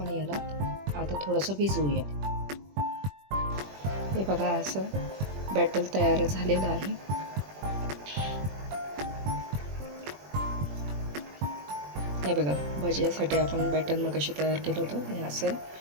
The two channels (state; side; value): late; left; 21 ms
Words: याला आता थोडंसं भिजवूया. हे बघा, असं बॅटर तयार झालेलं आहे. हे बघा, भज्यासाठी आपण बॅटर मगाशी तयार केलं होतं. हे असं